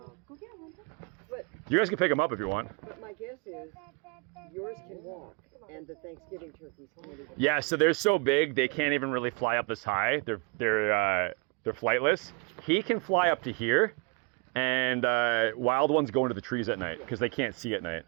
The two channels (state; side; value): quieter; left; 31.0 dB